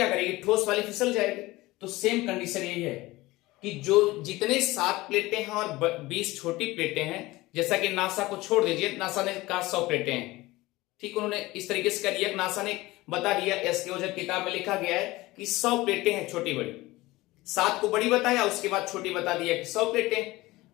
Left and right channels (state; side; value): quieter; right; 19.6 dB